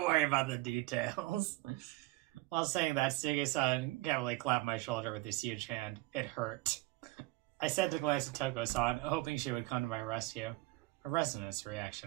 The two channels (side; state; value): left; quieter; 20.4 dB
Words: worry about the details. While saying that, Suga-san casually clapped my shoulder with his huge hand. It hurt. I said to glance at Toko-san, hoping she would come to my rescue. A resonance